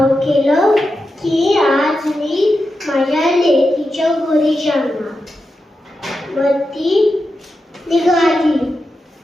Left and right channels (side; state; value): both; normal; correlation 0.89